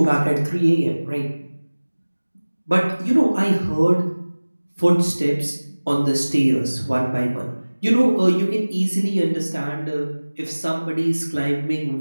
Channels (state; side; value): inverted; both; correlation -1.00